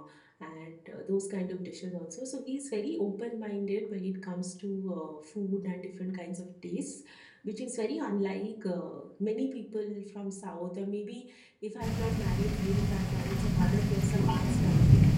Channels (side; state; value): both; identical; correlation 1.00